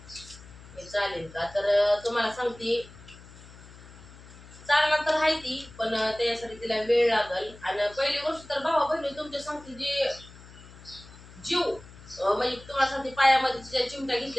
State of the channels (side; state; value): left; noise; hum, 19 dB below the sound